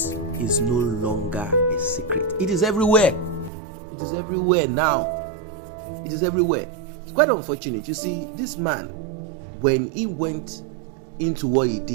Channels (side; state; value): left; drops out; at 3.5 s